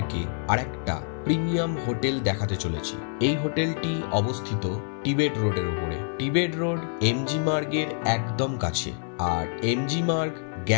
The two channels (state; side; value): silent; right; 61 dB below the other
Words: আরেকটা প্রিমিয়াম হোটেল দেখাতে চলেছি। এই হোটেলটি অবস্থিত টিবেট রোডের উপরে। টিবেট রোড এমজি মার্গের একদম কাছে, আর এমজি মার্গ